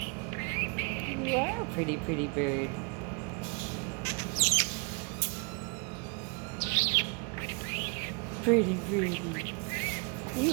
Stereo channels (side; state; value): left; quieter; 33.5 dB